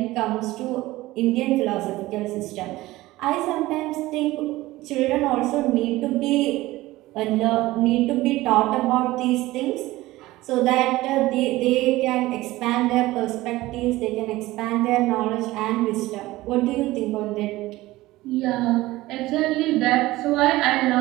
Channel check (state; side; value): quieter; left; 18.1 dB